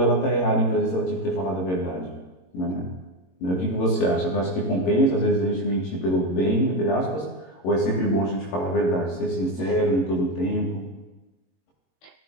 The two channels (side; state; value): right; late; 22 ms